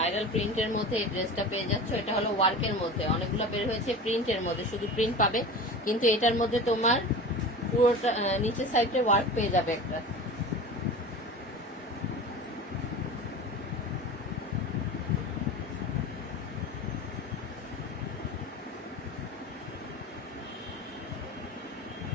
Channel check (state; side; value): normal; both; correlation 0.33